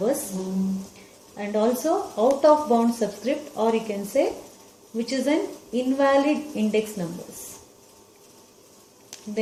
and also out of bound subscript, or you can say which is an invalid index numbers.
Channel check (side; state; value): both; identical; correlation 1.00